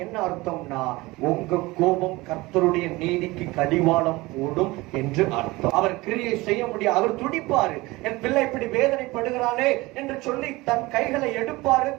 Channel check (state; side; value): quieter; left; 21.3 dB